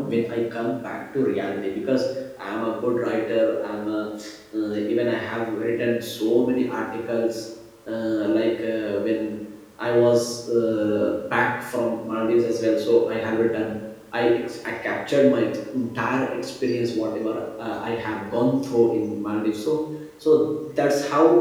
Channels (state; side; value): identical; both; correlation 1.00